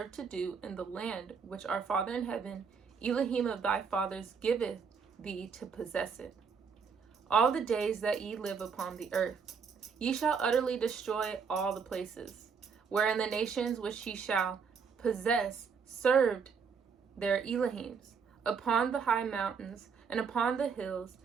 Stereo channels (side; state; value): left; quieter; 6.0 dB